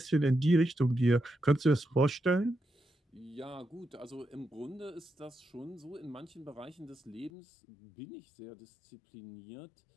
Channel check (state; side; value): drops out; right; at 7.3 s